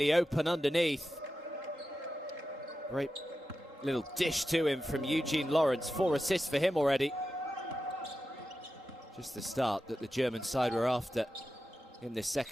open underneath. Great little dish to him from Eugene Lawrence. 4 assists for him already. Just the start that the German side were after in this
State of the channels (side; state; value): both; normal; correlation 0.92